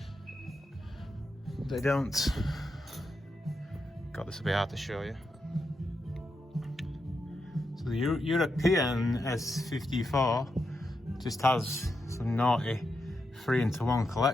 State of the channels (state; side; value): normal; both; correlation 0.85